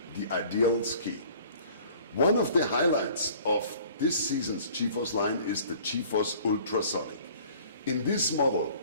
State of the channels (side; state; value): both; inverted; correlation -0.51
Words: the ideal ski. One of the highlights of this season's GeForce line is the GeForce Ultrasonic. In this model